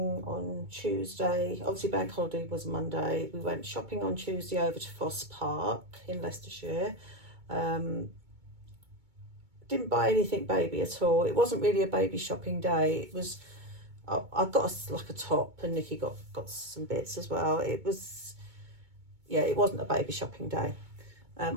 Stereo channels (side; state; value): left; late; 2.2 ms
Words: on Tuesday. Obviously bank holiday was Monday. We went shopping on Tuesday over to Foss Park in Leicestershire. Didn't buy anything baby at all. It wasn't really a baby shopping day. It was, I got like a top and Nikki got some bits as well. It was, yeah, it wasn't a baby shopping day.